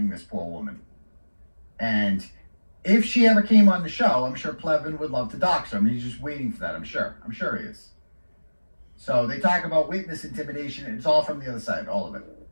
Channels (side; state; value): both; inverted; correlation -1.00